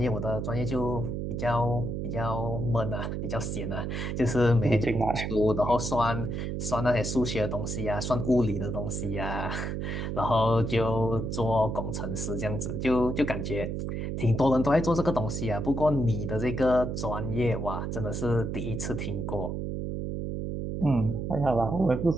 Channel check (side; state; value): right; noise; hum, 3 dB below the sound